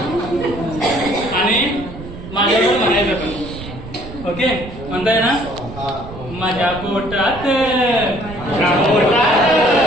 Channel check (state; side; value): noise; right; rumble, 13 dB below the sound